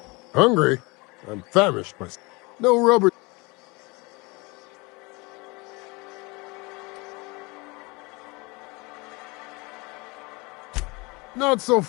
Hungry? I'm famished myself. No rubber. Not so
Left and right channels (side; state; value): right; quieter; 26.2 dB